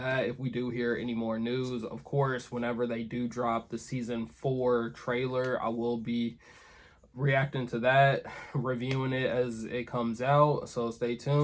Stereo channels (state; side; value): identical; both; correlation 1.00